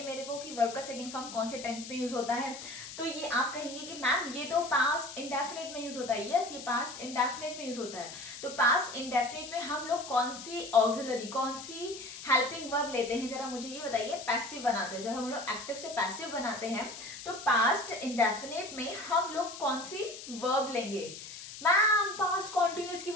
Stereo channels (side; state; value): left; noise; hiss, 12 dB below the sound